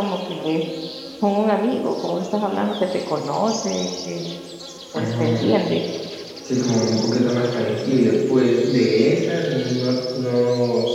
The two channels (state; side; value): identical; both; correlation 1.00